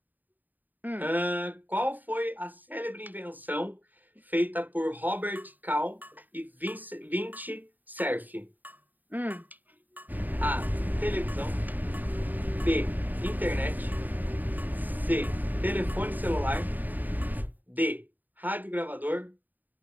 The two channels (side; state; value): left; late; 0.086 ms